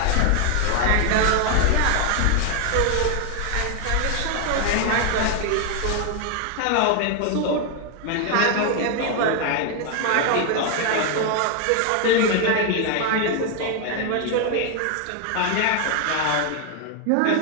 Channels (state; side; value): different; both; correlation 0.00